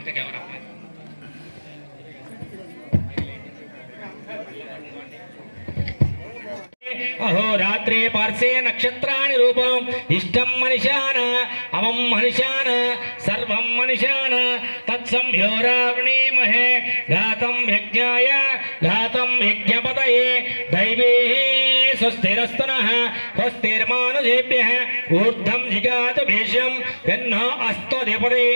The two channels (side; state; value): both; inverted; correlation -1.00